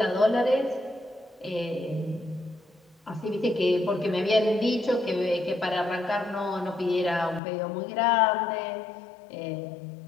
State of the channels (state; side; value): drops out; right; at 7.4 s